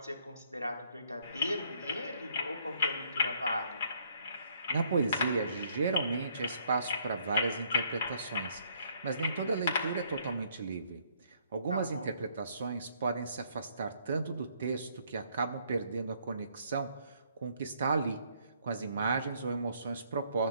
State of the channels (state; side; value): inverted; both; correlation -0.66